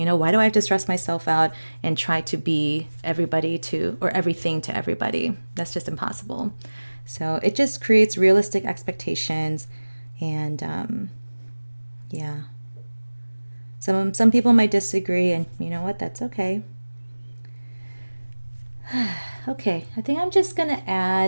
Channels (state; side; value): inverted; both; correlation -1.00